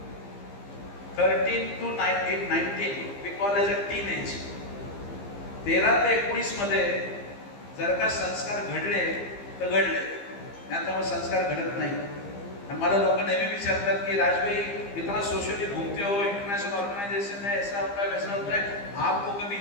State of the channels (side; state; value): right; late; 15 ms